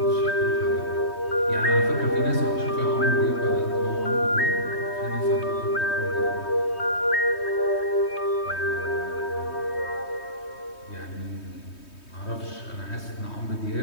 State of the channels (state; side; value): late; right; 3.2 ms